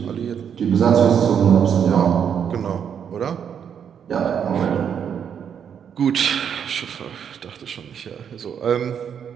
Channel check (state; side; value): quieter; left; 8.0 dB